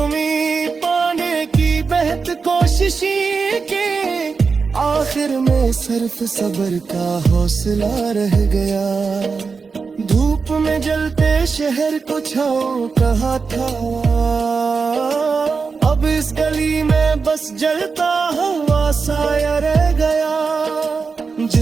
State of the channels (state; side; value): quieter; left; 4.9 dB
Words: पाने की बेहद कोशिश की, आखिर में सिर्फ सब्र का हौसला रह गया। धूप में जलते शहर को छाओ कहा था, अब इस गली में बस जलता हुआ साया रह गया।